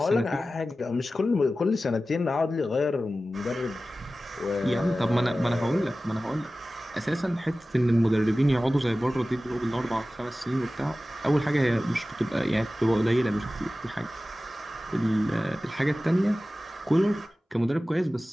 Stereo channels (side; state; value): both; normal; correlation 0.95